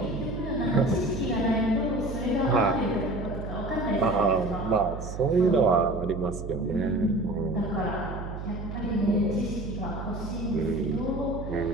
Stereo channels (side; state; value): right; noise; hum, 8 dB below the sound